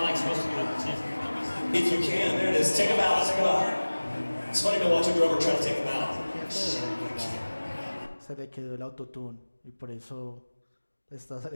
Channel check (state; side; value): inverted; both; correlation -1.00